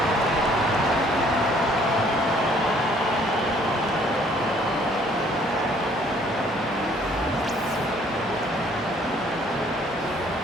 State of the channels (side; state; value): both; normal; correlation 0.60